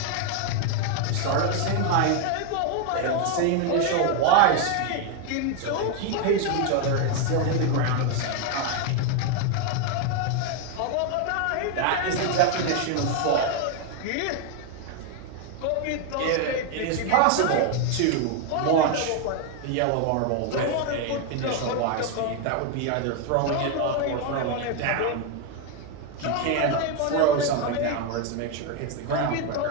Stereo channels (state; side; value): different; both; correlation 0.01